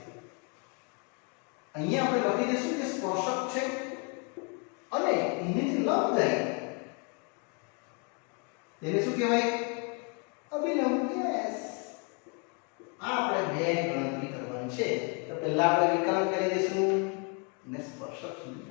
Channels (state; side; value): quieter; right; 34.6 dB